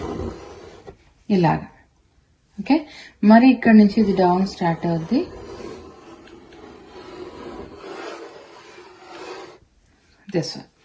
ఇలాగా. ఓకే, మరి ఇక్కడ నుంచి ఇది డౌన్ స్టార్ట్ అవుద్ది, దిస్ వన్.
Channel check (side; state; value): both; identical; correlation 1.00